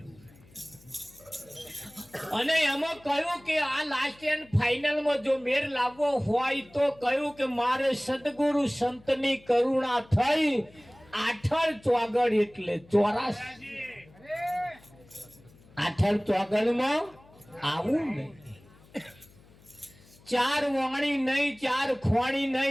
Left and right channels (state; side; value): noise; left; hum, 26 dB below the sound